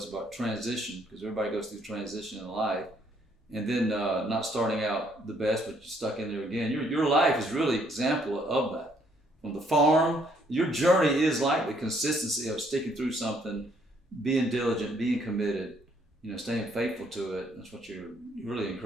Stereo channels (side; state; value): both; normal; correlation 0.68